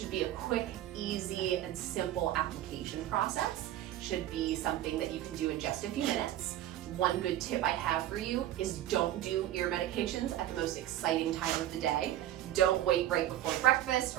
be a quick, easy, and simple application process. Should be something that you can do in just a few minutes. One good tip I have for you is don't do ear medications at the most exciting time of the day. Don't wait right before breakfast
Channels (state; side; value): quieter; left; 13.0 dB